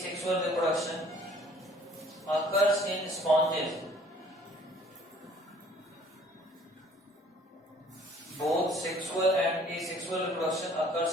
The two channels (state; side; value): normal; both; correlation 0.56